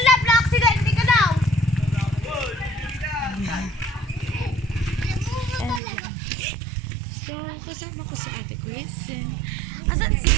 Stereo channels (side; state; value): left; drops out; at 5.8 s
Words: na-accident ka daw! So, kasama ko si Ate Chris. Asan si